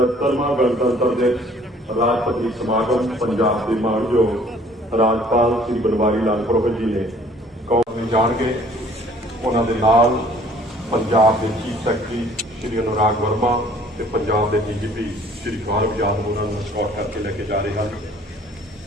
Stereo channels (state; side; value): normal; both; correlation 0.56